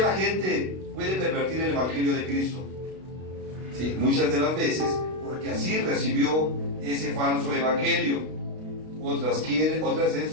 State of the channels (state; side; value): late; left; 32 ms